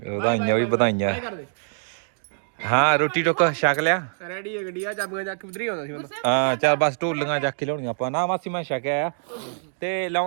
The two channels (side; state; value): left; silent; digital silence